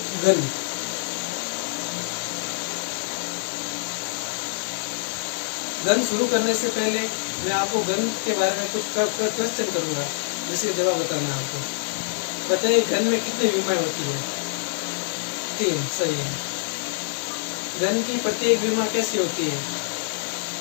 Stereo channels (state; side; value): silent; right; digital silence